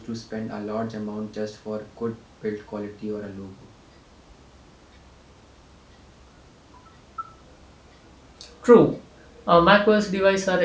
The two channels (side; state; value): both; identical; correlation 1.00